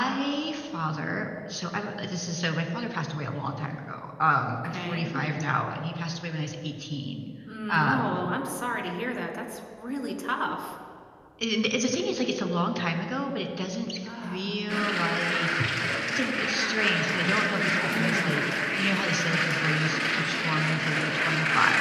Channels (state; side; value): identical; both; correlation 1.00